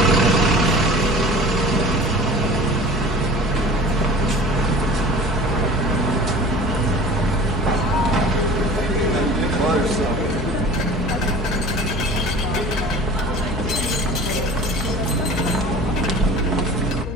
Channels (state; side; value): noise; left; hum, 8 dB below the sound